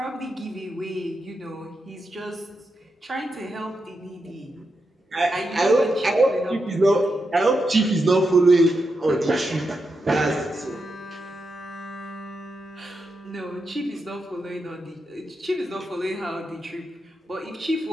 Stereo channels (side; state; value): both; normal; correlation 0.86